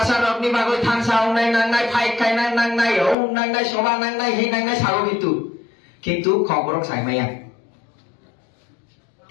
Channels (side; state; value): right; drops out; at 3.2 s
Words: অগ্নি বাগৈ থানসা নাই নাংনাই ফাইট খাই নাংনাই ও নাংনাই সভা নাংনাই হি নাংনাই সাগো কিন্তু খবরক সাইমাইয়া